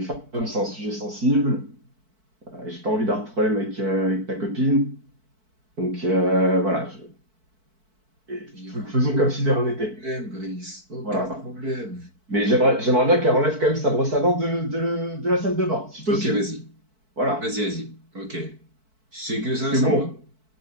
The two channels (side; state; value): left; late; 4.6 ms